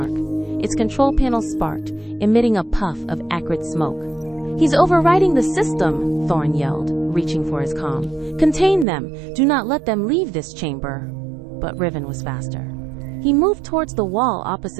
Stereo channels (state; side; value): drops out; left; at 8.8 s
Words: Its control panel sparked, emitting a puff of acrid smoke. "He's overriding the system," Thorn yelled, reaching for his comm. "Contain them! Do not let them leave this chamber!" But Riven was faster. He moved towards the wall